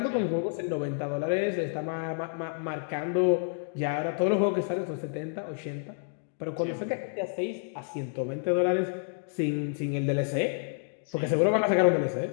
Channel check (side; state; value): right; silent; digital silence